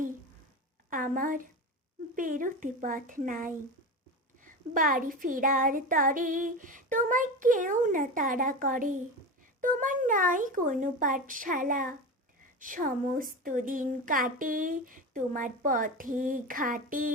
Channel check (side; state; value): both; normal; correlation 0.25